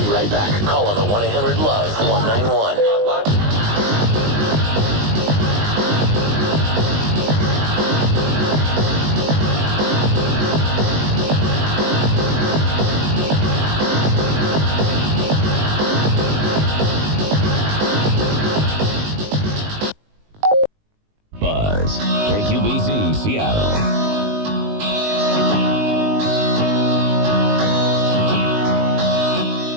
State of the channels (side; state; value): left; late; 19 ms